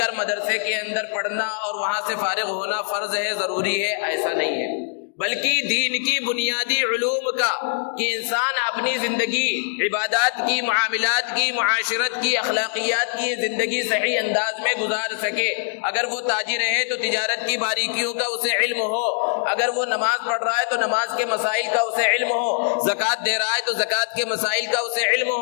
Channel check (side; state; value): right; silent; digital silence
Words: مدرسے کے اندر پڑھنا اور وہاں سے فارغ ہونا فرض ہے، ضروری ہے، ایسا نہیں ہے، بلکہ دین کی بنیادی علوم کا کہ انسان اپنی زندگی عبادات کی، معاملات کی، معاشرت کی، اخلاقیات کی زندگی صحیح انداز میں گزار سکے۔ اگر وہ تاجر ہے تو تجارت کی باریکیوں کا اسے علم ہو، اگر وہ نماز پڑھ رہا ہے تو نماز کے مسائل کا اسے علم ہو، زکوٰۃ دے رہا ہے تو زکوٰۃ کے مسائل کا اسے علم